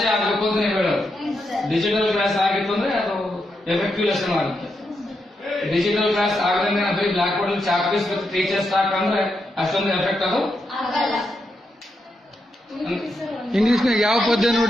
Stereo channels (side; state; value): both; normal; correlation 0.83